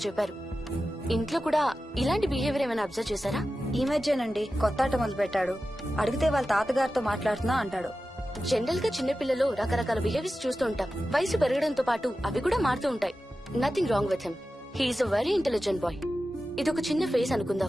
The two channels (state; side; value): normal; both; correlation 0.93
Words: చెప్పారు. ఇంట్లో కూడా ఇలాంటి బిహేవియర్ ఏమైనా అబ్జర్వ్ చేశారా? ఈ మధ్యనండి కొత్త ఆట మొదలు పెట్టాడు. అడిగితే వాళ్ళ తాతగారితో మాట్లాడుతున్నా అంటాడు. జనరల్ గా చిన్న పిల్లలు రకరకాల బిహేవియర్స్ చూస్తూ ఉంటాం. వయసు పెరగడంతో పాటు అవి కూడా మారుతూ ఉంటాయి. Nothing wrong with him. He's a very intelligent boy. ఇది ఒక చిన్న ఫేస్